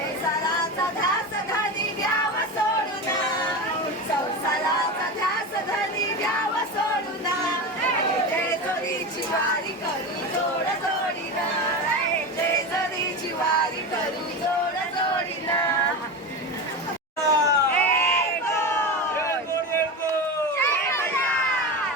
वारी करू जोड जोडीना, जेजुरीची वारी करू जोड जोडीना.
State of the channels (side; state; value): both; normal; correlation 0.23